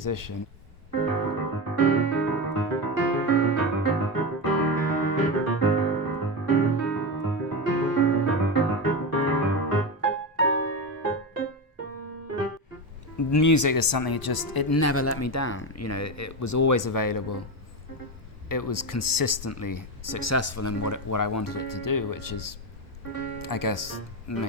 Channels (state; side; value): normal; both; correlation 0.16